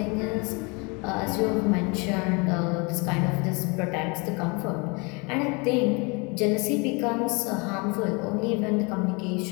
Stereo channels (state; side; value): quieter; right; 29.7 dB